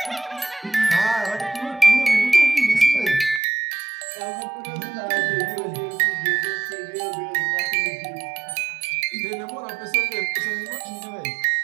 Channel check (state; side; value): drops out; left; at 3.4 s